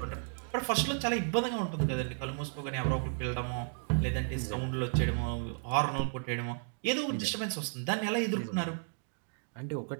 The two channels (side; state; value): left; silent; 55 dB below the other